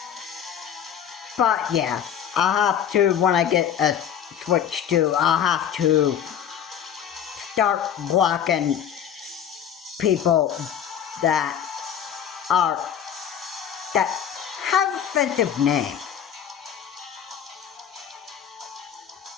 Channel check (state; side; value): quieter; right; 9.0 dB